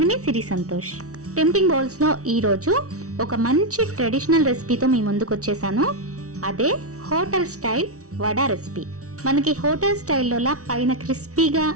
మీ సిరి సంతోష్. టెంప్టింగ్ బౌల్స్ లో ఈరోజు ఒక మంచి ట్రెడిషనల్ రెసిపీతో మీ ముందుకు వచ్చేసాను. అదే హోటల్ స్టైల్ వడా రెసిపీ. మనకి హోటల్ స్టైల్లోలా పైన క్రిస్పీగా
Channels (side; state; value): left; late; 0.66 ms